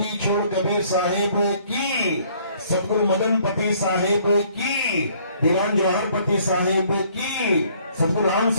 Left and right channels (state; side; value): inverted; both; correlation -0.61